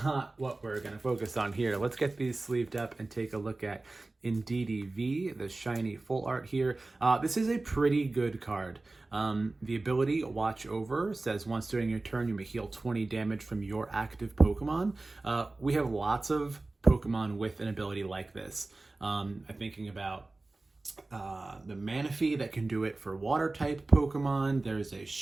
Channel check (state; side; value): quieter; left; 3.2 dB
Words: what we're going to focus on here. Let's get these sleeved up and take a look at Indeedee V, the shiny full art here. This is a pretty good card. The ability Watch Over says once during your turn you may heal 20 damage from your active Pokemon. We have lots of Pokemon with an ability like this. I'm thinking about the Manaphy that can do it for water type Pokemon. There's a